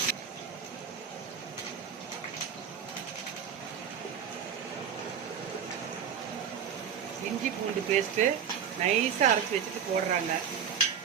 இஞ்சி பூண்டு பேஸ்ட்டு நைஸாக அரைச்சி வச்சுட்டு போடுறாங்க.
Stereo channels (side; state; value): left; quieter; 7.7 dB